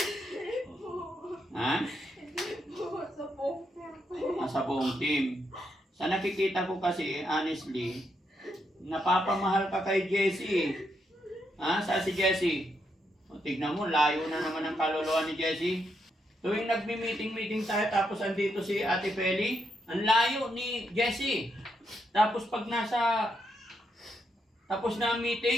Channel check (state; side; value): normal; both; correlation 0.80